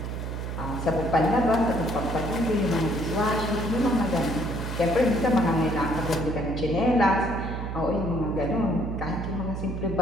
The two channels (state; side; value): noise; right; hum, 5 dB below the sound